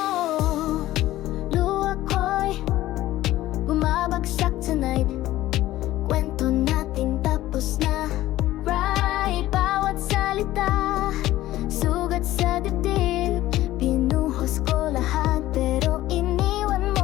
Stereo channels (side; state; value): right; quieter; 15.3 dB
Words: Luha ko'y bumabagsak tonight. Kwento natin tapos na. Right, bawat salita sugat sa dibdib. Pinuhos ko lahat pero iniwan